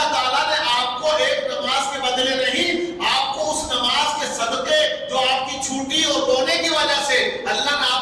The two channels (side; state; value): both; identical; correlation 1.00